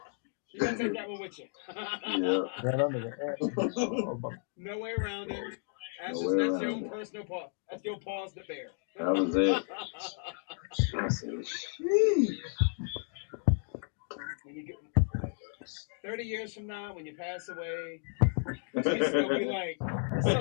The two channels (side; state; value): right; silent; 56 dB below the other